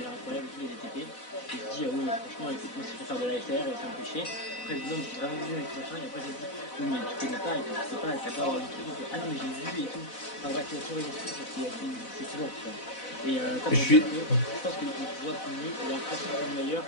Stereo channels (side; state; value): right; late; 4.0 ms